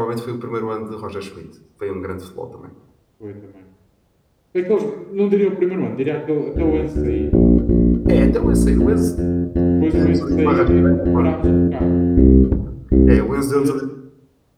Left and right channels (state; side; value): identical; both; correlation 1.00